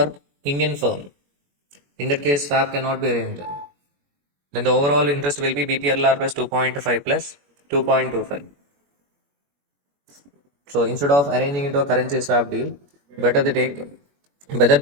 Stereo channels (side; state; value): left; late; 21 ms